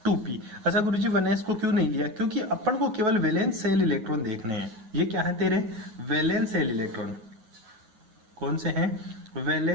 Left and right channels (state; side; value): late; left; 9.4 ms